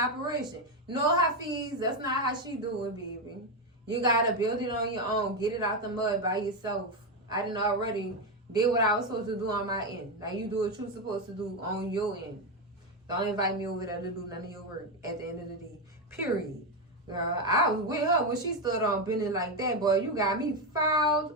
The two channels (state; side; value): normal; both; correlation 0.09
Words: No, Hafiz, that's not how she do it, baby. You got to build it on your own. Get it out the mud by yourself. I done already did what I was supposed to do on my end. Now you do what you're supposed to do on your end. Don't invite me over there to do none of your work at the end of the day. Period. Girl, I was with her when she stood on bending like that, boy. You got me